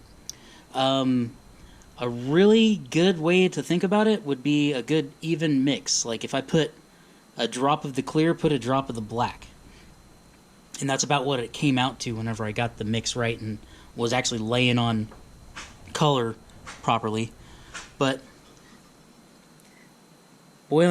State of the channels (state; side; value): identical; both; correlation 1.00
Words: A really good way to think about it would be a good even mix. Like if I put a drop of the clear, put a drop of the black. And that's about what it came out to whenever I got the mix right and was actually laying on color properly. But boy,